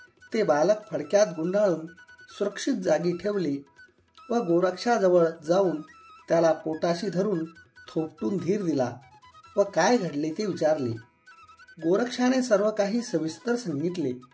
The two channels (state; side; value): identical; both; correlation 1.00